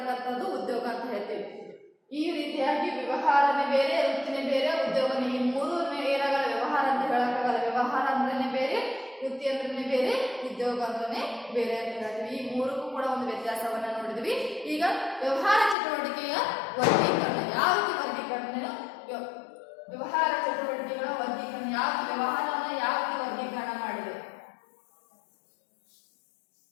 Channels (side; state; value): right; drops out; at 15.8 s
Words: ಉದ್ಯೋಗ ಅಂತ ಹೇಳ್ತೀವಿ. ಈ ರೀತಿಯಾಗಿ ವ್ಯವಹಾರನೇ ಬೇರೆ, ವೃತ್ತಿನೇ ಬೇರೆ, ಉದ್ಯೋಗನೇ, ಈ ಮೂರು ಏನಾಗಲ್ಲ ವ್ಯವಹಾರ ಅಂತ ಹೇಳಕ್ಕಾಗಲ್ಲ. ವ್ಯವಹಾರ ಅಂದ್ರೇನೆ ಬೇರೆ, ವೃತ್ತಿ ಅಂದ್ರೆ ಬೇರೆ, ಉದ್ಯೋಗ ಅಂದ್ರೆ ಬೇರೆ ಅಂತ ಹೇಳ್ತೀವಿ. ಈ ಮೂರಕ್ಕೂ ಕೂಡ ಒಂದು ವ್ಯತ್ಯಾಸವನ್ನ ನೋಡಿದ್ವಿ. ಈಗ ವ್ಯವಹಾರ ಚಟುವಟಿಕೆಯ ವರ್ಗೀಕರಣ, ಯಾವ ರೀತಿ ವರ್ಗೀಕರಣ, ವ್ಯವಹಾರ ಚಟುವಟಿಕೆಗಳ ವರ್ಗೀಕರಣ, ವ್ಯವಹಾರವನ್ನ ಯಾವ ರೀತಿ ವರ್ಗೀಕರಣ ಮಾಡಿದೆ.